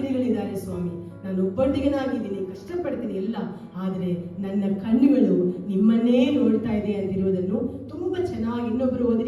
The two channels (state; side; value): identical; both; correlation 1.00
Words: ಸ್ವಾಮಿ, ನಾನು ಒಬ್ಬಂಟಿಗನಾಗಿದ್ದೀನಿ, ಕಷ್ಟಪಡ್ತೀನಿ ಎಲ್ಲ, ಆದರೆ ನನ್ನ ಕಣ್ಣುಗಳು ನಿಮ್ಮನ್ನೇ ನೋಡ್ತಾ ಇದೆ ಅಂತಿರುವುದನ್ನು ತುಂಬಾ ಚೆನ್ನಾಗಿ ಇನ್ನೊಬ್ರು